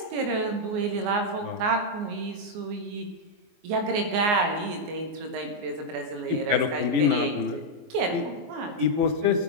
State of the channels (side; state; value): left; late; 24 ms